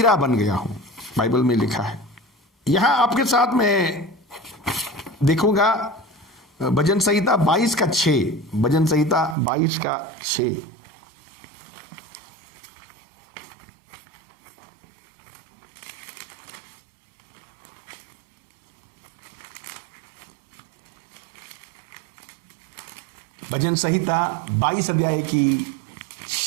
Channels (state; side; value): drops out; left; at 9.3 s